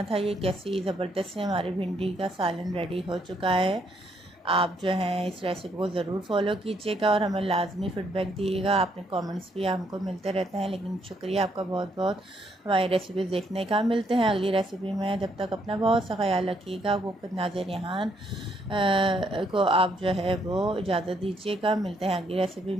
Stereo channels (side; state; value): both; normal; correlation 0.72